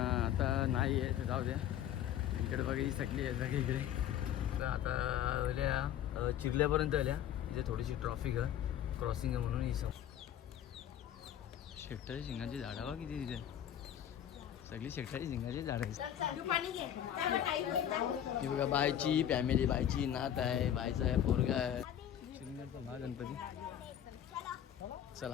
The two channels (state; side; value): quieter; right; 10.5 dB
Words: नाही आहे, तर जाऊ द्या. इकडे बघा ही सगळी आहे सगळी इकडे. तर आता आल्या चिरल्यापर्यंत आल्या, इथे थोडीशी ट्रॉफिक आहे, क्रॉसिंग आहे म्हणून ही शेकटाची शिंगाची झाडं बघा किती तिथे, सगळी शेकटाची शिंगाची झाडं आहेत. ही बघा बायची फॅमिली, बायची नात आहे, बायचा आहे पोरगा आहे. चिरनेरचा महागणपती. चला